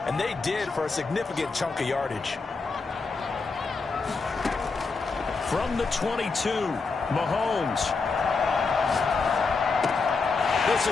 and they did for a significant chunk of yardage. From the 22, Mahomes. This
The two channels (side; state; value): right; quieter; 4.4 dB